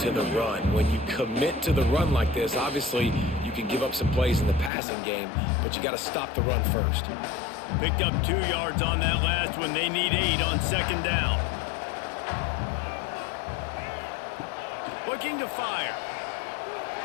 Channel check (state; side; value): drops out; right; at 4.7 s